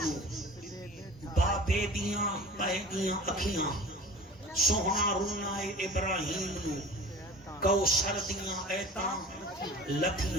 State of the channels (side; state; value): both; normal; correlation 0.40